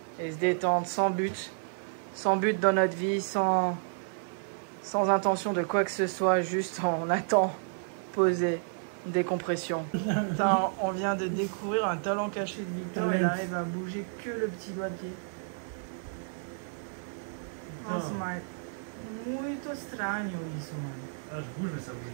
et se détendre sans but dans notre vie, sans intention de quoi que ce soit, juste on attend, posé, décompression. Putain, on vient de découvrir un talent caché de Victor, il arrive à bouger que le petit doigt de pied. Nossa, mas muito estranho isso, mano. Ah, je bouge, mais ça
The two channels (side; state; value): left; silent; digital silence